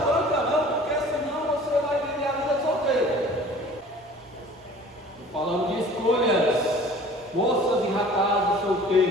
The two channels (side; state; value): both; normal; correlation 0.47